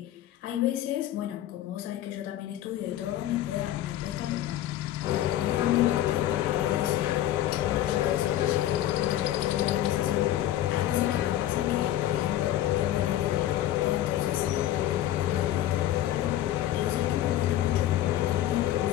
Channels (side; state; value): right; quieter; 13.1 dB